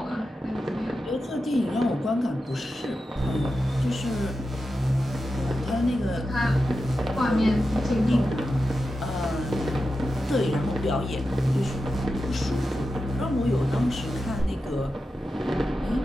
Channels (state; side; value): normal; both; correlation 0.90